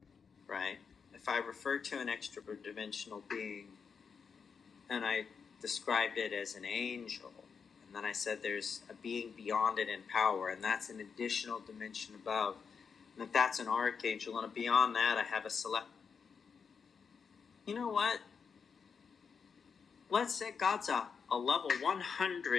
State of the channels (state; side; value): quieter; right; 6.0 dB